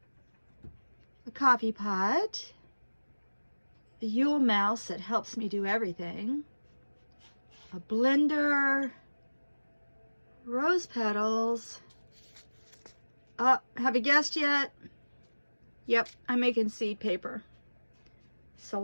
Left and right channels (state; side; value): inverted; both; correlation -1.00